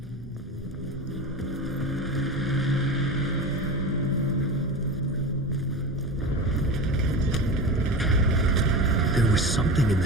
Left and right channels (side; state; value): both; normal; correlation 0.27